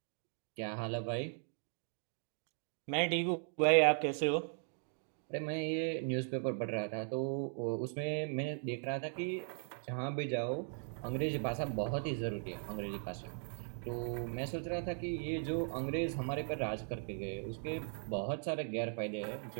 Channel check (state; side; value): silent; left; 52 dB below the other